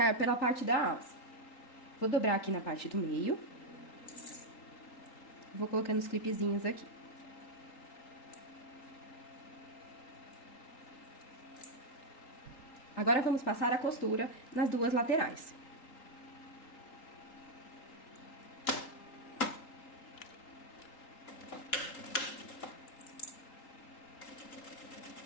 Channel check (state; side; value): late; right; 3.8 ms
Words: pela parte da alça. Vou dobrar aqui na parte do meio. Vou colocando os clipezinhos aqui. Agora vamos passar a costura nas duas laterais.